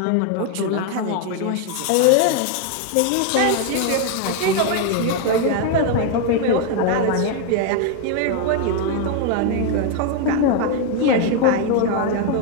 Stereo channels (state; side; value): different; both; correlation 0.01